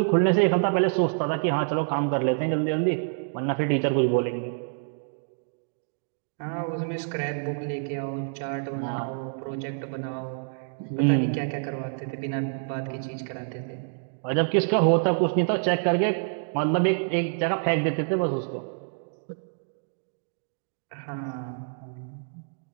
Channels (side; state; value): left; silent; digital silence